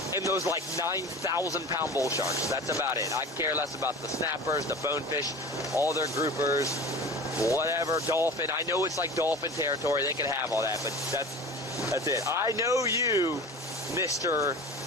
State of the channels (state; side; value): normal; both; correlation 0.35